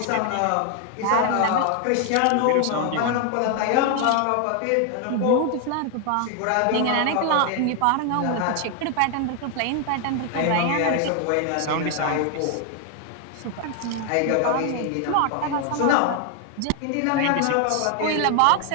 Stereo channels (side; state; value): both; different; correlation 0.00